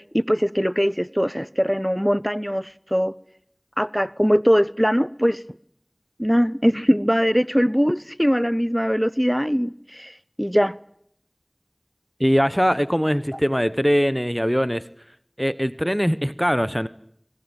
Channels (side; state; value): both; identical; correlation 1.00